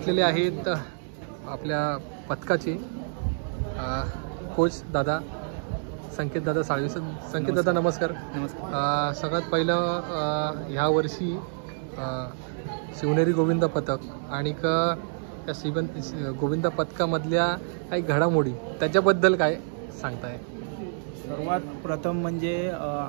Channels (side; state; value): left; silent; digital silence